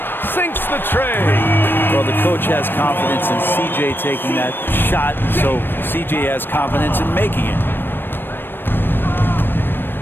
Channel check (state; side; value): late; right; 0.097 ms